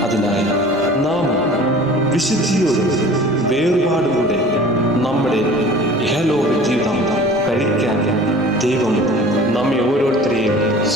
അതിനായി നാം വിശുദ്ധിയോടും വേർപാടുകൂടെ നമ്മുടെ ഇഹലോക ജീവിതം കഴിക്കാൻ ദൈവം നമ്മെ ഓരോരുത്തരെയും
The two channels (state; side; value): normal; both; correlation 0.44